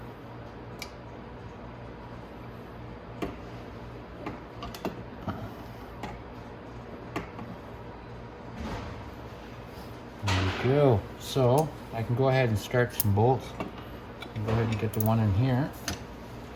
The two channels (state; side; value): identical; both; correlation 1.00